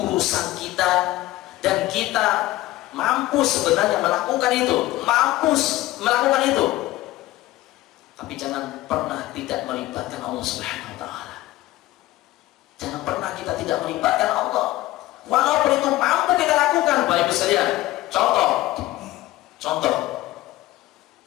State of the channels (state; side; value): quieter; right; 16.8 dB